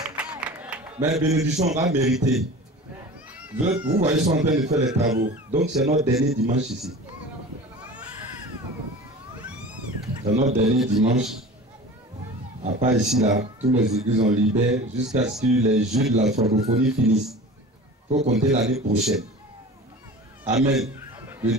Mais bénédiction, on va mériter. Vous voyez, ils sont en train de faire les travaux. Donc c'est notre dernier dimanche ici. C'est notre dernier dimanche. À part ici, là, tous les églises ont libéré jusqu'à ce que les jeux de la francophonie finissent. Il faut compter l'année prochaine. Amen. Le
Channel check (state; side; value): normal; both; correlation 0.38